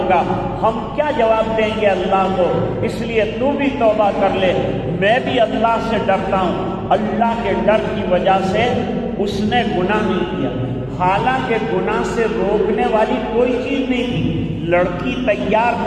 ہم کیا جواب دیں گے اللہ کو، اس لیے تو بھی توبہ کر لے، میں بھی اللہ سے ڈرتا ہوں۔ اللہ کے ڈر کی وجہ سے اس نے گناہ نہیں کیا، حالانکہ گناہ سے روکنے والی کوئی چیز نہیں تھی، لڑکی تیار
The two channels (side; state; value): both; identical; correlation 1.00